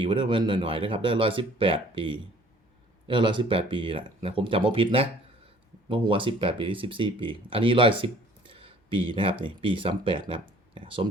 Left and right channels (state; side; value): normal; both; correlation 0.55